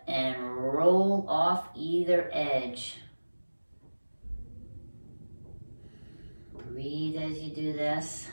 and roll off either edge. Breathe as you do this.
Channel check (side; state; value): both; inverted; correlation -1.00